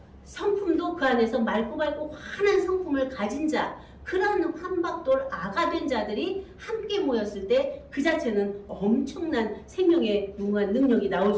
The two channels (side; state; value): both; identical; correlation 1.00